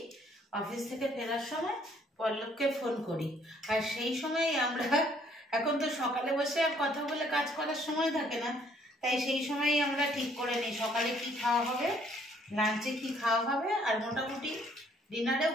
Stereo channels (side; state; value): both; normal; correlation 0.63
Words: অফিস থেকে ফেরার সময় পল্লবকে ফোন করি, আর সেই সময় আমরা, এখন তো সকালে বসে আর কথা বলে কাজ করার সময় থাকে না, তাই সেই সময়ই আমরা ঠিক করে নিই সকালে কি খাওয়া হবে, লাঞ্চে কি খাওয়া হবে, আর মোটামুটি ডিনারেও